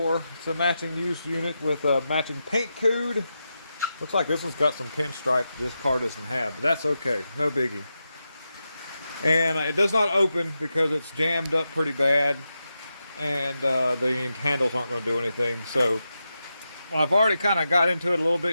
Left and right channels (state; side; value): inverted; both; correlation -0.89